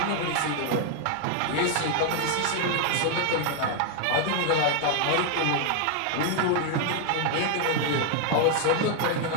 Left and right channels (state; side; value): different; both; correlation 0.00